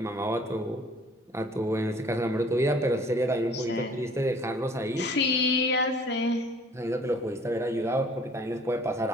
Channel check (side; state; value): both; normal; correlation 0.53